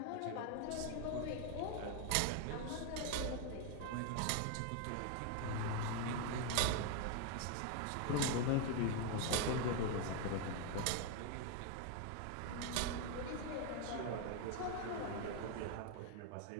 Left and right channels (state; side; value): different; both; correlation 0.01